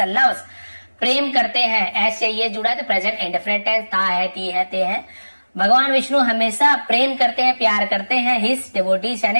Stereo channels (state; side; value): inverted; both; correlation -1.00